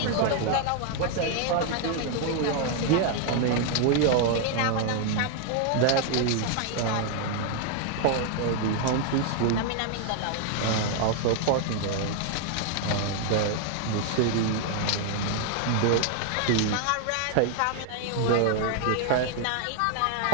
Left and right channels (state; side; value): different; both; correlation 0.00